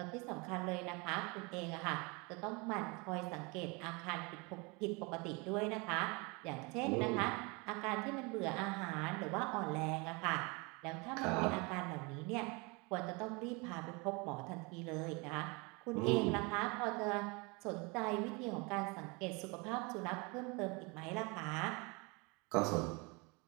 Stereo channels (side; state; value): left; quieter; 28.5 dB